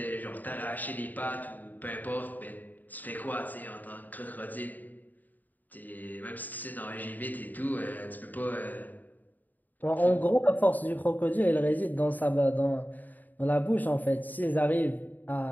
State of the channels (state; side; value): late; right; 0.084 ms